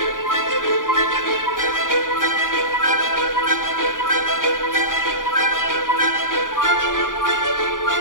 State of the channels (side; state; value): right; late; 0.89 ms